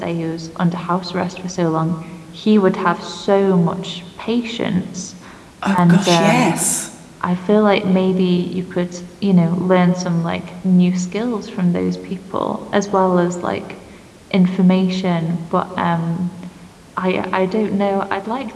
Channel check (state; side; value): identical; both; correlation 1.00